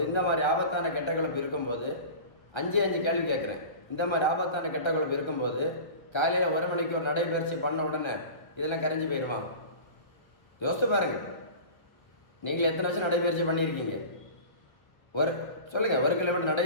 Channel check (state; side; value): late; right; 1.4 ms